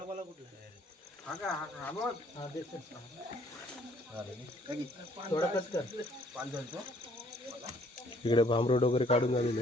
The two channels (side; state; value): both; normal; correlation 0.61